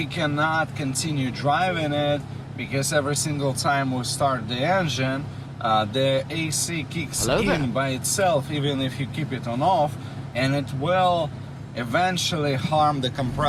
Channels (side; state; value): both; identical; correlation 1.00